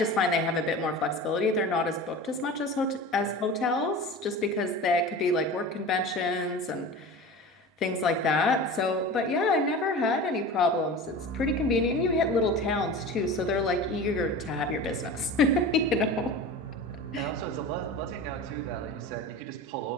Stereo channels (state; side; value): normal; both; correlation 0.33